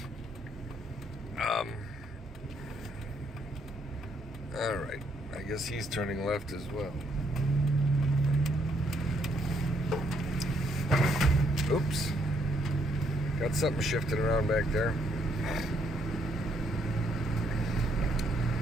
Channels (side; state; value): both; normal; correlation 0.71